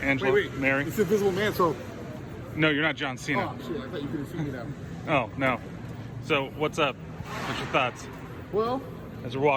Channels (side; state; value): both; identical; correlation 1.00